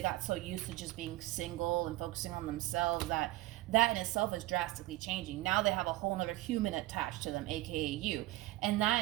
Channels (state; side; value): quieter; left; 18.0 dB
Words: got so used to just being single and focusing on themselves that in itself is drastically changing. Now they have a whole nother human attached to them, aka you. And that